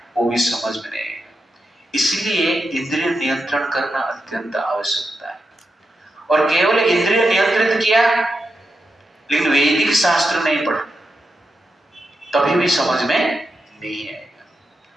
वो भी समझ में नहीं आएगा। इसलिए इंद्रिय नियंत्रण करना अत्यंत आवश्यकता है। और केवल इंद्रिय नियंत्रित किया लेकिन वैदिक शास्त्र नहीं पढ़ा तभी भी समझ में नहीं आएगा।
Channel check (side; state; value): both; normal; correlation 0.87